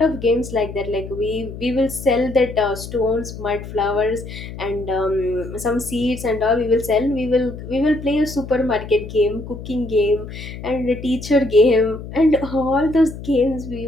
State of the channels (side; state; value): left; noise; hum, 11 dB below the sound